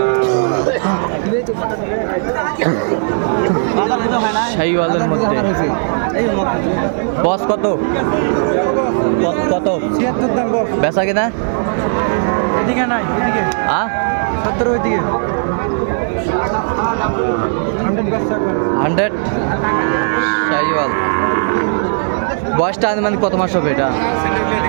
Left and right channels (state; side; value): silent; left; digital silence